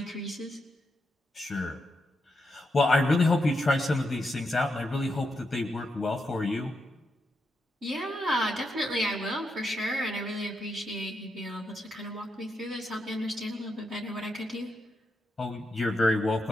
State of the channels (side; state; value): both; normal; correlation 0.83